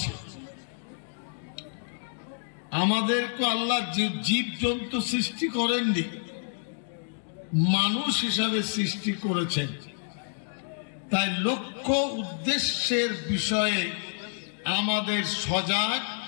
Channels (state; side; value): silent; right; digital silence